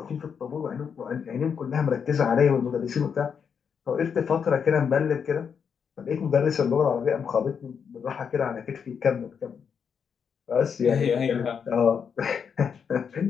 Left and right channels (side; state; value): right; quieter; 6.8 dB